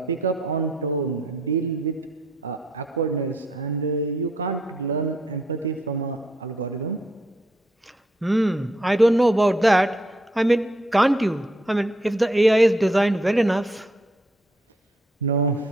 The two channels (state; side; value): normal; both; correlation 0.71